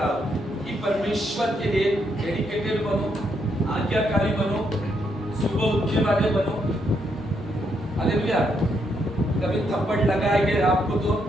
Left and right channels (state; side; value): normal; both; correlation 0.76